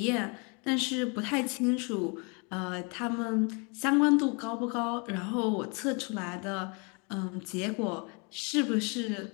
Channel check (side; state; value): right; quieter; 33.4 dB